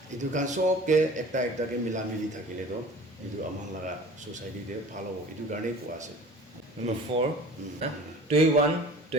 এইটো কাৰণ চবকে একটাকে মিলা মিলি থাকিলেতো এইটো আমাৰ লগা ছ'চাইটিতে ভাল হ'ব এইটো কাৰণেই কোৱা আছে Number 4, Tuiwan,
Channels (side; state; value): both; normal; correlation 0.43